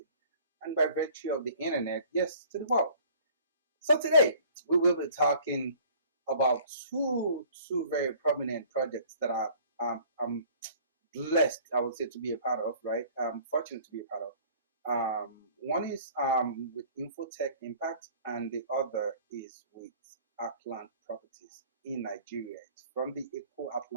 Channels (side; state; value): both; inverted; correlation -0.51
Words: and by virtue of the internet, yes, to the world. So today, we will be talking about two very prominent projects that I'm blessed, I would say, to be a part of, right? Fortunate to be a part of. One is with Infotech Impact, and the other is with Arkland Properties in Nigeria. It's from the Eco